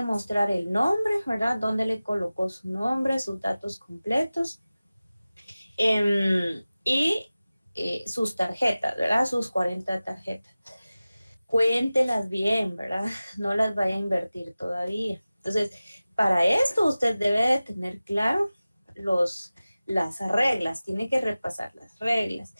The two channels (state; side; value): inverted; both; correlation -0.97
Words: mostrar el nombre, ¿verdad? Dónde le colocó su nombre, sus datos completos. Y sus tarjetas, ¿verdad? Sus 40 tarjetas. Cuéntelas bien, ¿verdad? No las vaya a invertir todavía. Entonces, para esto usted debe de tener claro las reglas, tiene que repasar las reglas.